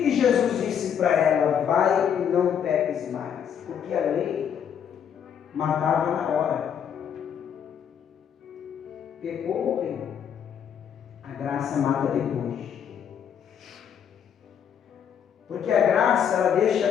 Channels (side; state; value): right; quieter; 8.3 dB